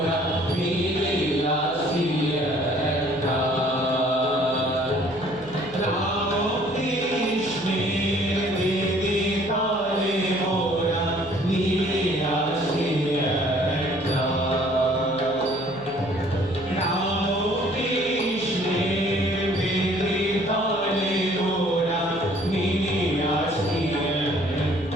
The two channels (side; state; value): right; noise; hum, 23 dB below the sound